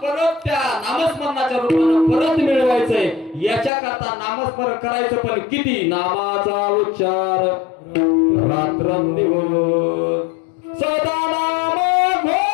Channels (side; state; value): right; drops out; at 3.7 s